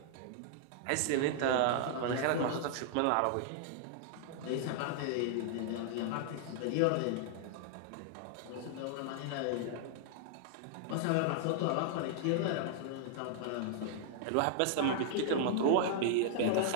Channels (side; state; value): both; different; correlation -0.01